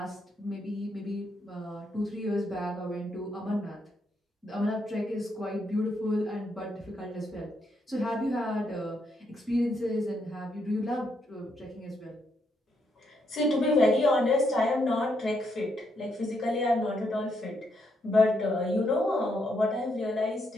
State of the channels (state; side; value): normal; both; correlation 0.77